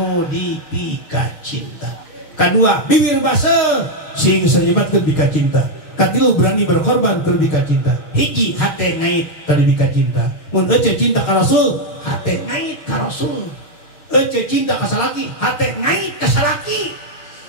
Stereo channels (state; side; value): late; right; 6.4 ms